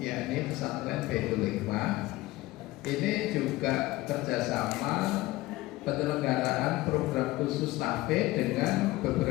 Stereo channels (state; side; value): quieter; right; 18.6 dB